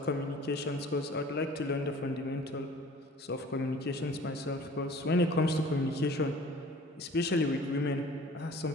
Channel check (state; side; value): normal; both; correlation 0.47